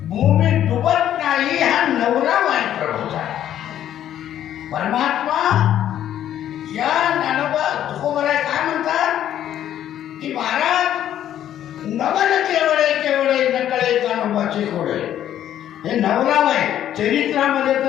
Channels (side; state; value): right; quieter; 11.1 dB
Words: भूमी डुबत नाही, हा नवलावय प्रभूचा. परमात्मा या ज्ञानोबा तुकोबराय काय म्हणतात की महाराज नवन केवळे केवळे नकळे ज्ञानोबाचे कोळे. हे नवलावय चरित्रामध्ये